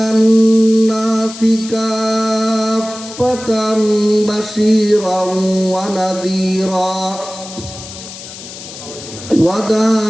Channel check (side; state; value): left; noise; hiss, 13 dB below the sound